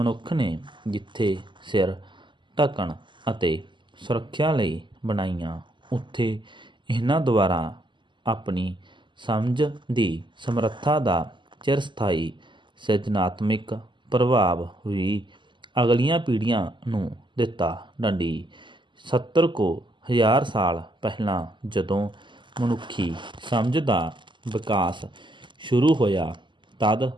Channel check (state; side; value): late; left; 0.23 ms